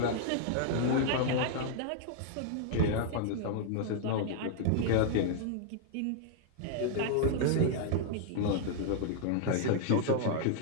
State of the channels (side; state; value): both; different; correlation -0.01